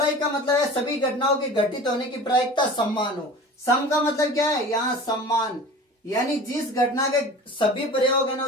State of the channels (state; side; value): normal; both; correlation 0.38